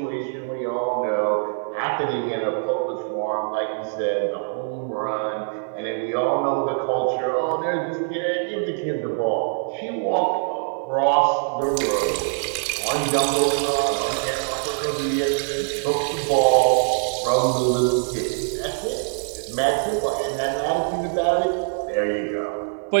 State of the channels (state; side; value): silent; left; digital silence